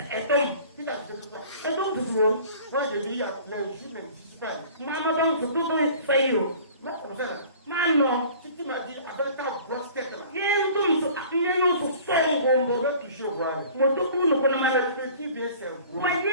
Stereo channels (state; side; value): inverted; both; correlation -0.47